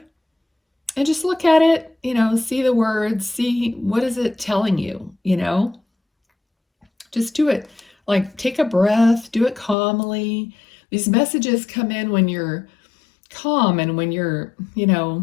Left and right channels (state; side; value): drops out; right; at 9.8 s